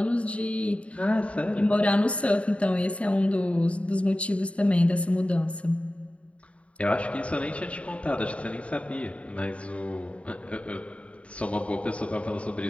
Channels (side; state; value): right; late; 0.062 ms